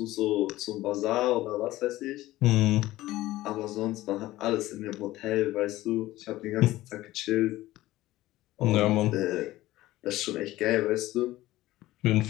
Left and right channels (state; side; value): quieter; right; 16.6 dB